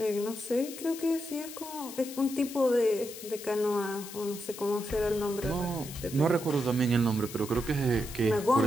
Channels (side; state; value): left; noise; hiss, 12 dB below the sound